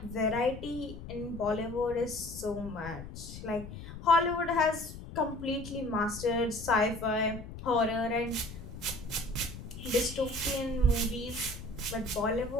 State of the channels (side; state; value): left; noise; rumble, 11 dB below the sound